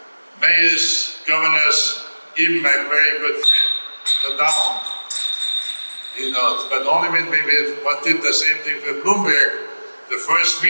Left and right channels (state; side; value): inverted; both; correlation -1.00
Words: mayors, governors, even my very good friend, the Down. You know, but only when we did the same thing for Bloomberg, the first